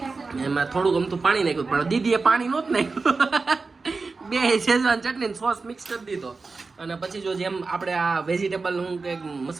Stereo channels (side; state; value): left; quieter; 4.1 dB